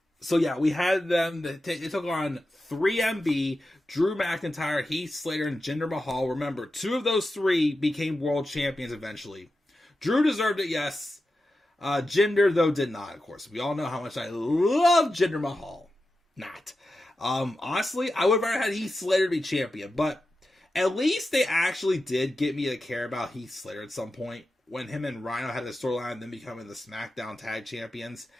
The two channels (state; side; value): normal; both; correlation 0.91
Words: So, yeah, we had them. They took on 3MB, Drew McIntyre, Heath Slater, and Jinder Mahal. Remember, 2 of those 3 became world champions eventually. Drew deserved it, yes. Jinder, though, did not, of course. We all know how much I love Jinder Mahal. Not. Honestly, I would have rather had Heath Slater be champion, but at least they actually did get me to care about Heath Slater at some point. When him and Rhino had the storyline, then becoming the SmackDown Tag Champions